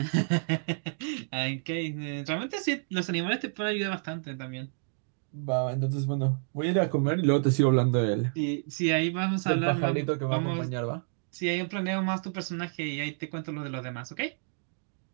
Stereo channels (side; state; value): left; silent; digital silence